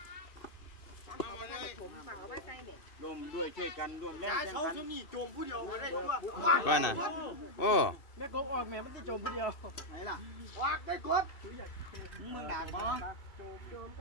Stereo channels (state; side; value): late; right; 2.6 ms